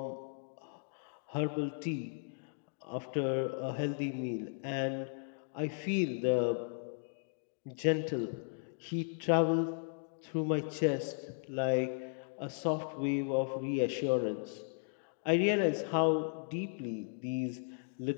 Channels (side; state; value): right; silent; digital silence